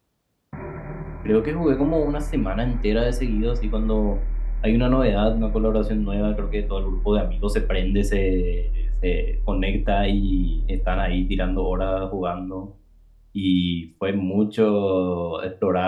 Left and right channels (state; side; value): identical; both; correlation 1.00